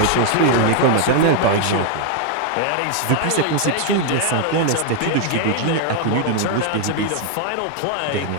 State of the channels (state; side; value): different; both; correlation 0.00